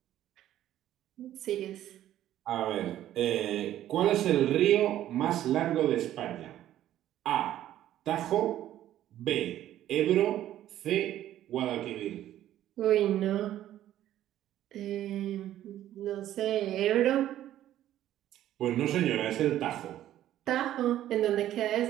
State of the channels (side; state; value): left; quieter; 12.6 dB